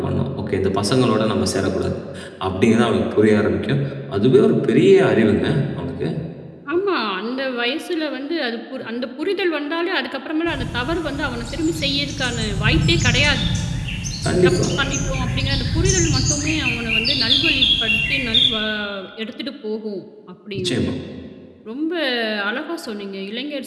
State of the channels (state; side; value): identical; both; correlation 1.00